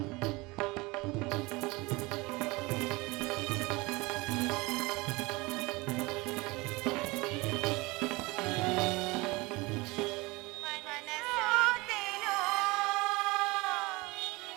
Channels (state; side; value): quieter; left; 23.6 dB